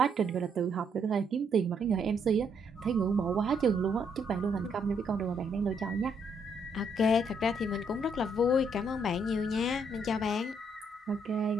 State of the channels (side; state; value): both; normal; correlation 0.72